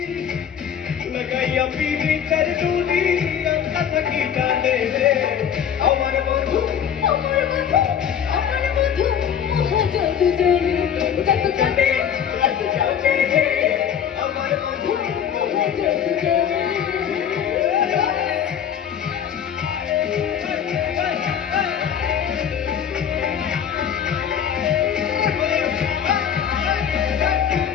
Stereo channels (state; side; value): quieter; right; 8.5 dB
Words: লাগাইয়া পীড়িতের ডুরি আমরা থাকি টানে রে আমার বন্ধু আমার বন্ধু আমার বন্ধু জাদু জানে জাদু জানে জাদু জানে রে আমার বন্ধু জাদু জানে